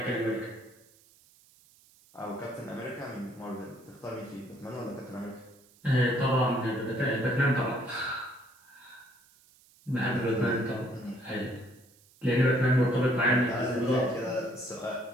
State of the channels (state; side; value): noise; right; hiss, 29 dB below the sound